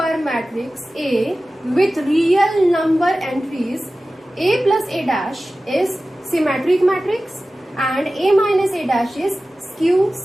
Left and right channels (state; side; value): normal; both; correlation 0.96